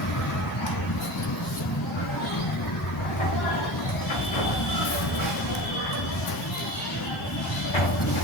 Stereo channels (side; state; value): both; normal; correlation 0.31